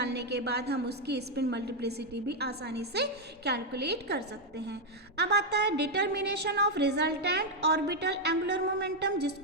के बाद हम उसकी स्पिन मल्टीप्लिसिटी भी आसानी से कैलकुलेट कर सकते हैं। अब आता है determination of resultant orbital angular momentum,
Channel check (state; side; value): normal; both; correlation 0.01